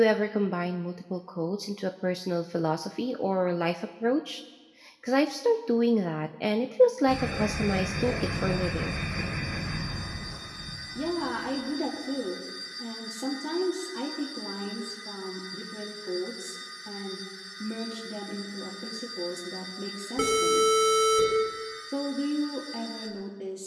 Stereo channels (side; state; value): both; identical; correlation 1.00